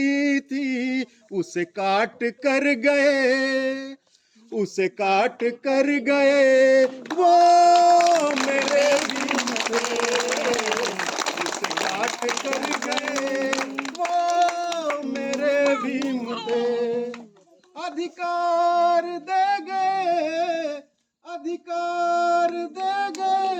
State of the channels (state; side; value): identical; both; correlation 1.00